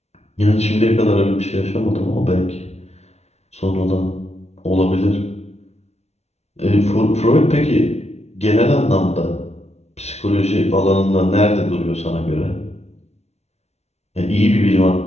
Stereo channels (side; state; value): right; late; 0.31 ms